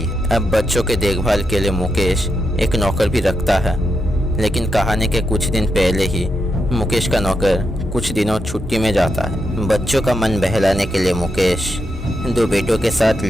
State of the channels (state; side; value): normal; both; correlation 0.84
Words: है। अब बच्चों के देखभाल के लिए मुकेश एक नौकर भी रखता है, लेकिन कहानी के कुछ दिन पहले ही मुकेश का नौकर कुछ दिनों छुट्टी में जाता है। बच्चों का मन बहलाने के लिए मुकेश 2 बेटों के साथ